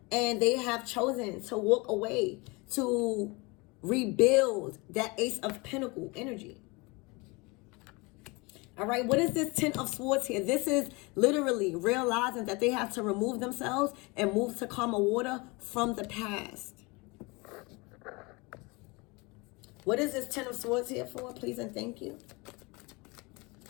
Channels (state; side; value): quieter; right; 26.4 dB